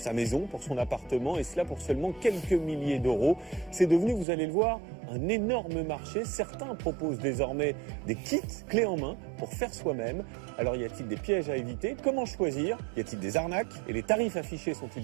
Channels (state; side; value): drops out; left; at 4.2 s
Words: maison, pour son appartement, et cela pour seulement quelques milliers d'euros. C'est devenu, vous allez le voir, un énorme marché. Certains proposent désormais des kits clés en main pour faire soi-même. Alors y a-t-il des pièges à éviter? Comment choisir? Y a-t-il des arnaques? Et les tarifs affichés sont-ils